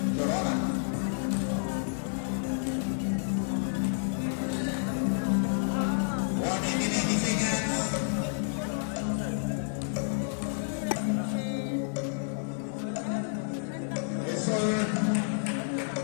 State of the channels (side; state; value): right; silent; digital silence